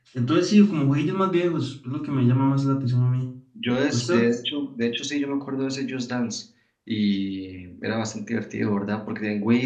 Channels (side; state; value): both; identical; correlation 1.00